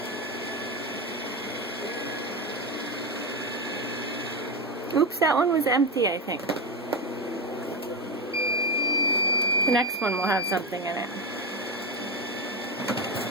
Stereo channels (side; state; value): both; normal; correlation 0.14